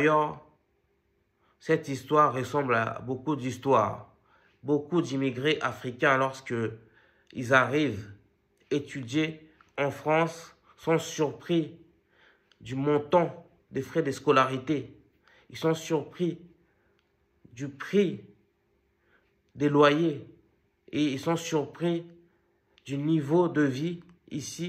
cette histoire ressemble à beaucoup d'histoires. Beaucoup d'immigrés africains, lorsque ils arrivent étudier en France, sont surpris du montant des frais de scolarité. Ils sont surpris du prix des loyers et ils sont surpris du niveau de vie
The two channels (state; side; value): identical; both; correlation 1.00